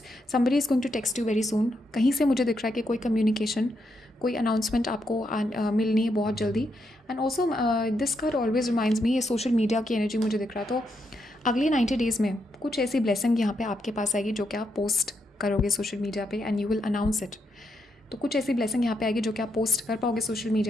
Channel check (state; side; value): normal; both; correlation 0.80